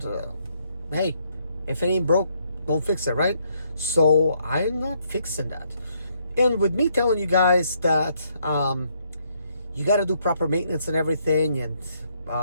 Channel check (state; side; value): inverted; both; correlation -0.72